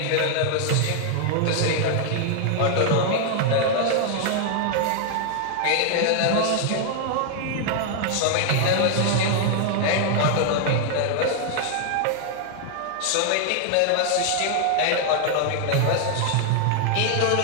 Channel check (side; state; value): both; different; correlation 0.00